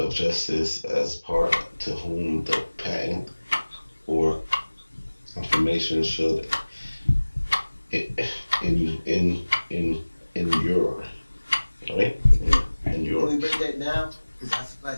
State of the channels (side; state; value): both; inverted; correlation -1.00